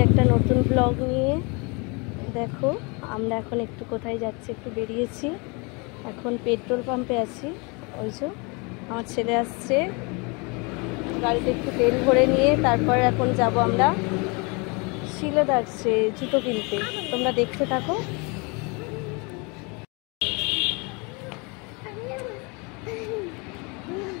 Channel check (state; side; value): quieter; right; 30.1 dB